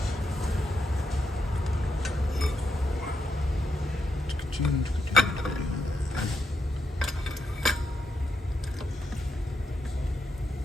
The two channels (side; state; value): both; normal; correlation 0.82